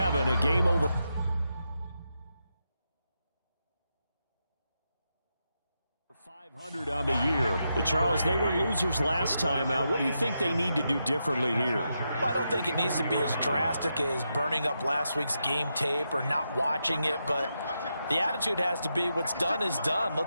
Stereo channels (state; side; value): inverted; both; correlation -0.85